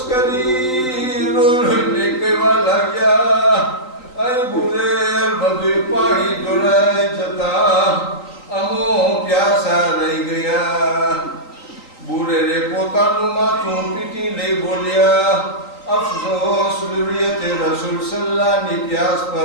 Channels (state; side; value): late; right; 3.9 ms